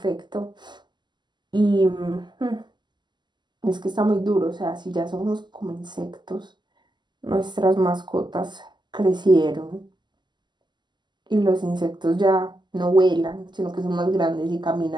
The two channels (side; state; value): left; late; 0.21 ms